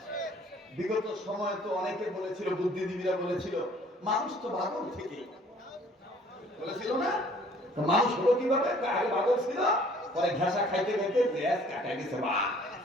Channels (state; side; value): normal; both; correlation 0.56